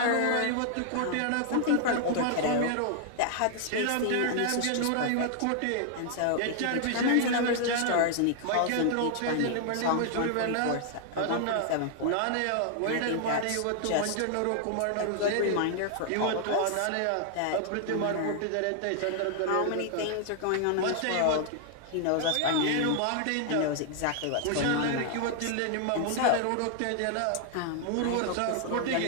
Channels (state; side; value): different; both; correlation 0.00